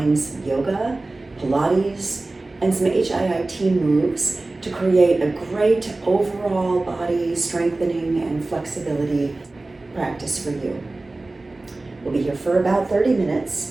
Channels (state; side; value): quieter; left; 3.1 dB